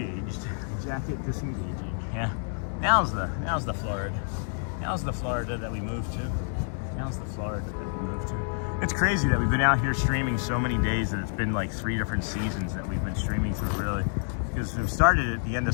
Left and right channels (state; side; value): silent; right; 59 dB below the other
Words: Yeah. Now's the Florida. Now's the Florida that we moved to. It's crazy that we've been out here streaming so many days that it's been like 3 different seasons that we've been streaming through, really. Because we started at the end